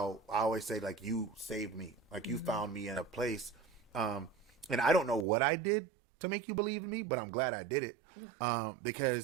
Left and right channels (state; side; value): drops out; left; at 5.2 s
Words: I always say, like, you saved me, like you found me in a place, and I don't know what I did to make you believe in me, but I'm glad I did it,